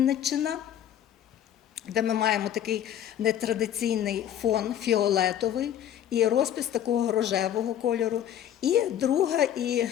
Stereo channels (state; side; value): quieter; right; 10.5 dB